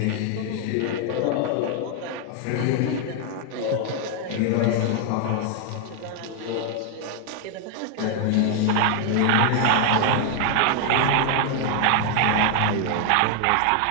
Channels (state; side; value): different; both; correlation 0.00